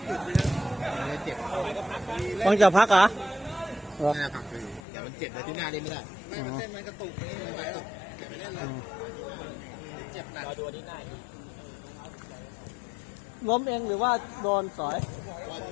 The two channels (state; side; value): drops out; right; at 4.8 s